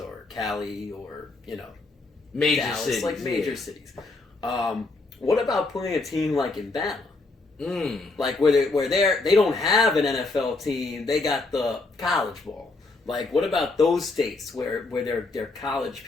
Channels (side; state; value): right; quieter; 3.5 dB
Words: Cali or major Dallas, cities, major cities. What about putting a team in Bama? Where they don't have an NFL team, they got the college ball. What about those states where they're college